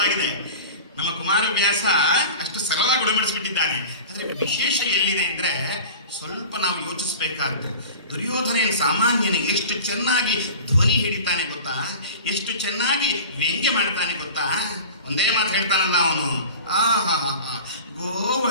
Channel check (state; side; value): inverted; both; correlation -0.37